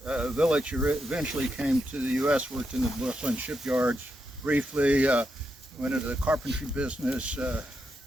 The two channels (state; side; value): normal; both; correlation 0.84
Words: Willich eventually came to the U.S., worked in the Brooklyn shipyards briefly, went into the carpentry business,